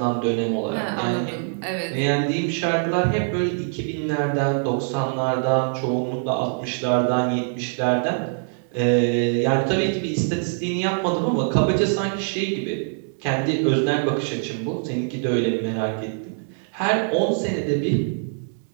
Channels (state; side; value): silent; left; 63 dB below the other